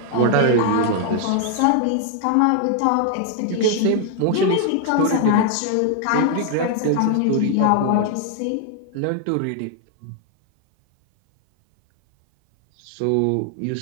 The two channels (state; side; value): different; both; correlation 0.00